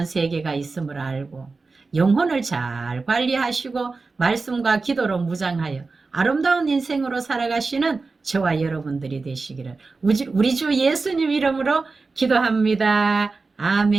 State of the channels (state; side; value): quieter; left; 4.0 dB